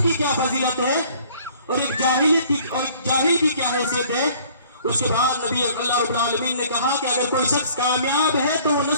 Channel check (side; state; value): both; inverted; correlation -0.55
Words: کی کیا فضیلت ہے، اور ایک جاہل کی کیا حیثیت ہے۔ اس کے بعد نبی اللہ رب العالمین نے کہا کہ اگر کوئی شخص کامیاب ہے تو وہ